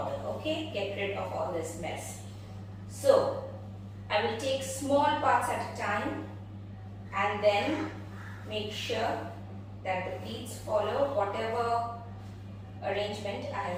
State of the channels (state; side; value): identical; both; correlation 1.00